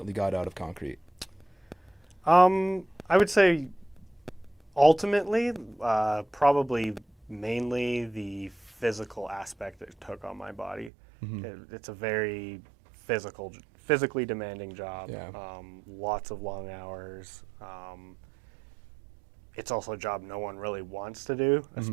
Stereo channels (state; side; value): drops out; left; at 10.9 s